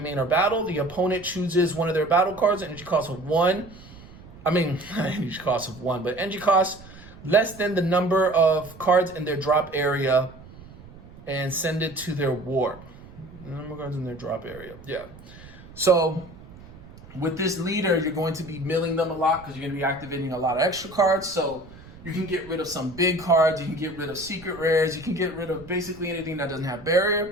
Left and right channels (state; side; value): noise; right; rumble, 19 dB below the sound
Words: or battle. The opponent chooses one of their battle cards, energy cost of 1. Energy cost of 1, but energy cost less than the number of cards in their drop area, and send it to their warp. The number of cards in their drop area. Yeah. So with this leader, you're going to be milling them a lot because you're going to be activating a lot of extra cards. So you can get rid of some big cards. You can get rid of secret rares. You can get rid of basically anything that doesn't have